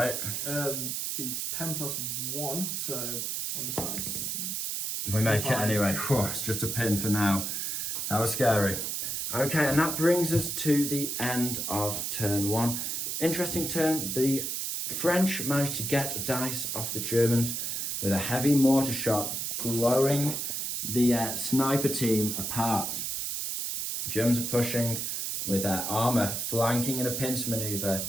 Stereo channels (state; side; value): noise; right; hiss, 2 dB below the sound